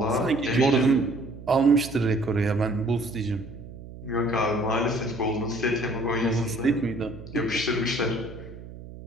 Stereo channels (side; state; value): right; noise; hum, 15 dB below the sound